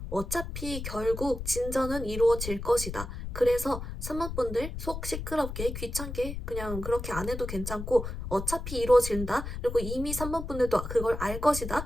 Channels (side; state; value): left; noise; rumble, 7 dB below the sound